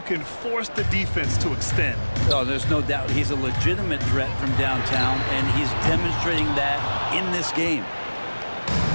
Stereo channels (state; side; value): inverted; both; correlation -1.00